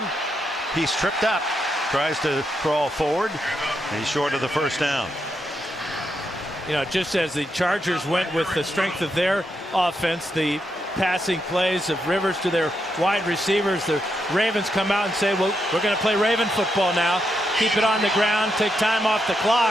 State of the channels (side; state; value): both; normal; correlation 0.82